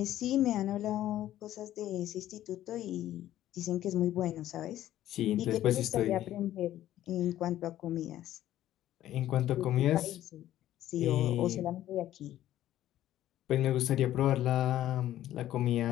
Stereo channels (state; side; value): quieter; right; 13.1 dB